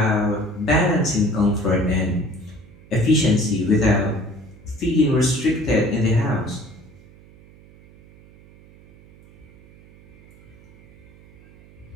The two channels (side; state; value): right; noise; hum, 24 dB below the sound